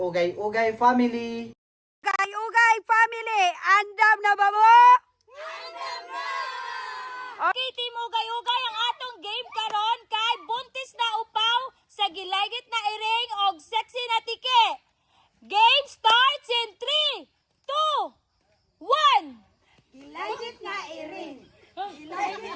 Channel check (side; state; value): both; identical; correlation 1.00